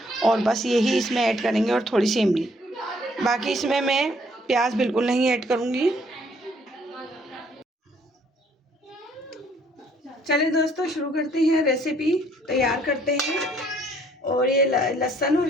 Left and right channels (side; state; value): both; normal; correlation 0.64